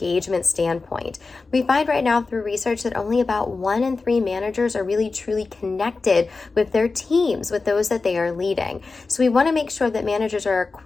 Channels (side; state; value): right; quieter; 4.0 dB